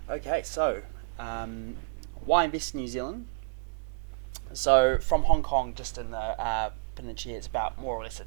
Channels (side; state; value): left; silent; digital silence